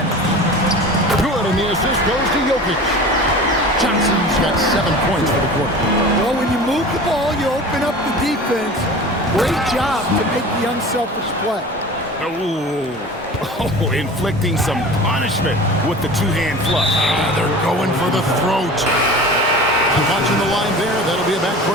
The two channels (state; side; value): normal; both; correlation 0.37